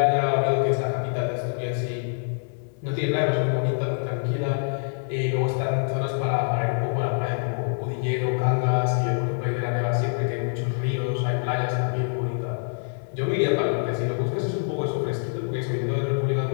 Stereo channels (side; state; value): right; silent; digital silence